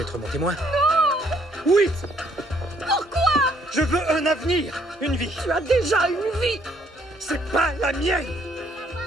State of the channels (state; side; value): normal; both; correlation 0.66